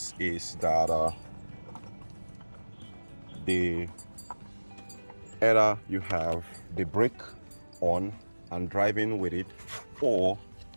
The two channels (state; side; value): inverted; both; correlation -1.00